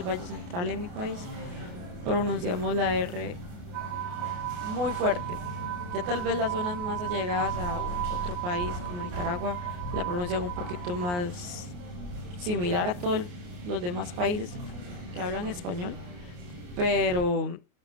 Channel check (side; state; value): left; late; 28 ms